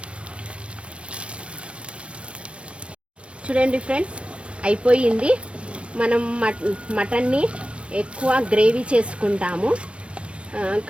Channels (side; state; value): left; late; 0.060 ms